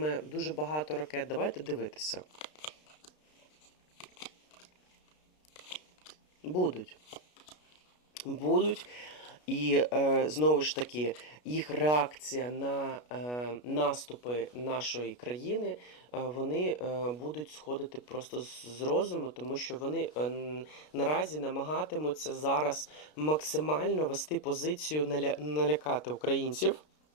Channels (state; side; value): late; right; 33 ms